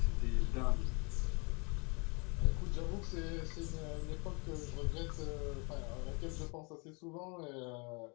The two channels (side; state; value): right; quieter; 31.4 dB